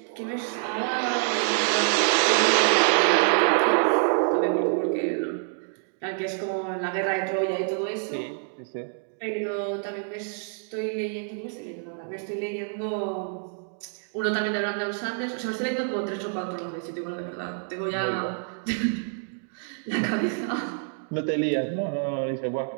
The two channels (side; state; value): left; silent; 60 dB below the other